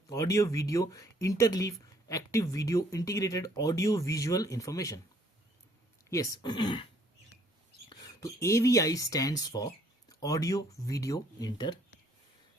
audio video interleave, active video integrated audio visual information. Yes, तो AVI stands for audio video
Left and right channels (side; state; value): both; normal; correlation 0.63